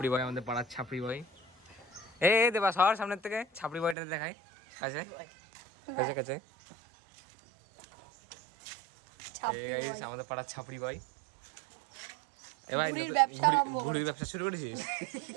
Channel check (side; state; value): left; drops out; at 4.0 s